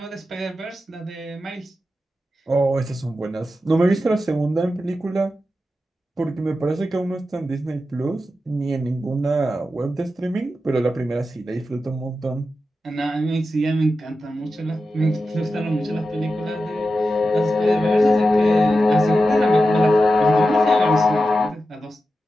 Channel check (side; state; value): both; normal; correlation 0.90